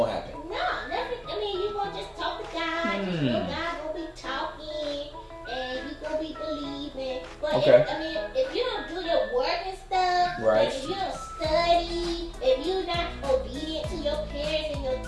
happen. No, nothing. I mean, you gonna just talk to God. You know, God gonna be talking, and you gonna be believing. But Okay. if you don't do your work and stuff, Right. like if you don't study, if you're not obedient to your parents and your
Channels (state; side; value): identical; both; correlation 1.00